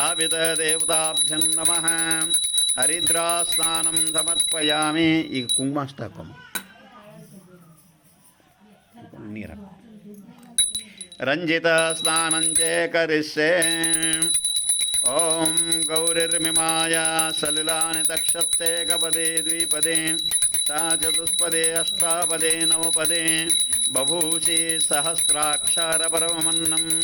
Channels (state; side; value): identical; both; correlation 1.00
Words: नमः हरिद्रास्नानं समर्पयामि ಈಗ ಕುಂಕುಮ ಹಾಕೋಣ ನೀರು ರಂಜಿತ ಸ್ನಾನಂ ಚ ಕರಿಷ್ಯೆ ಓಂ ಗೌರಿರ್ಮಿಮಾಯ ಸಲಿಲಾನಿ ತಕ್ಷತೆ ಗಪದೇ ದ್ವಿಪದೇ सा चतुष्पदे अष्टापदे नवपदे बभूषि सहस्राक्षरपरमन्नं